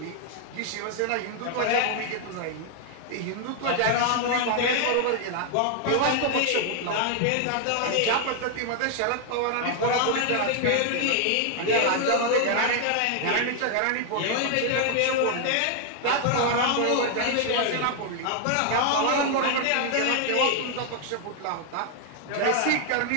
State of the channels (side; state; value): both; different; correlation 0.00